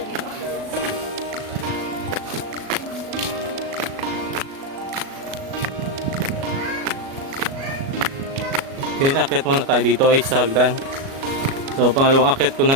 dito. Okay, akit muna tayo dito ay sa hagdan. So, pangalawang akit ko na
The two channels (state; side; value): late; left; 37 ms